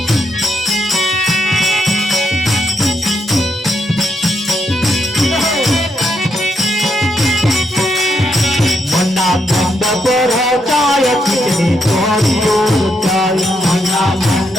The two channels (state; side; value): normal; both; correlation 0.79